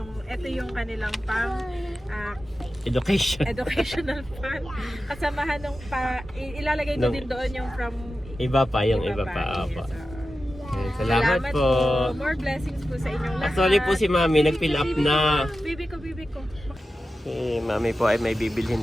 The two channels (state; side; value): normal; both; correlation 0.93